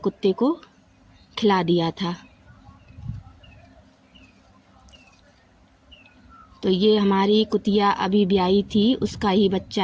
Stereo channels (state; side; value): identical; both; correlation 1.00